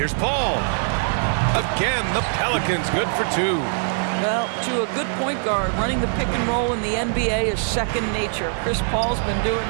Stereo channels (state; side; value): silent; left; digital silence